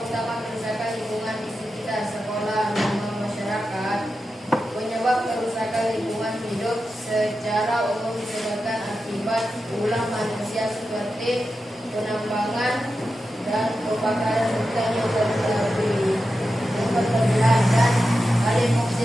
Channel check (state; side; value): normal; both; correlation 0.90